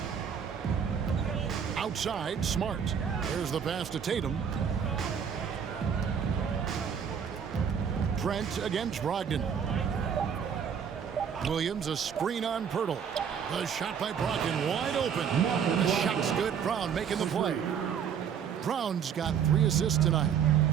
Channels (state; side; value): quieter; left; 7.6 dB